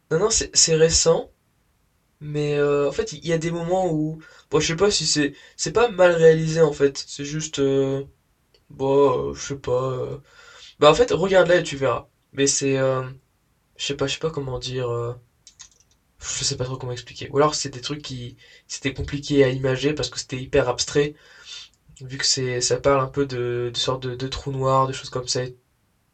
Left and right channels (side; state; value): both; identical; correlation 1.00